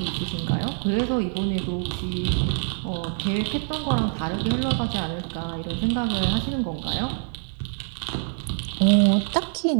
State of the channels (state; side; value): silent; left; 62 dB below the other